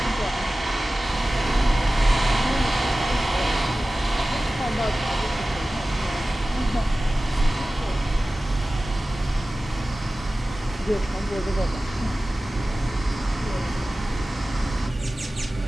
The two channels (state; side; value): normal; both; correlation 0.96